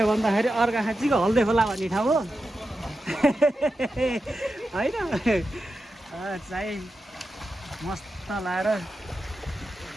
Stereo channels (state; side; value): normal; both; correlation 0.90